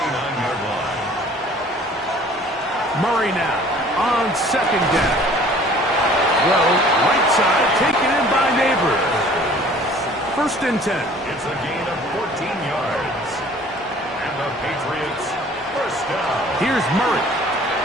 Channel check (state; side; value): normal; both; correlation 0.51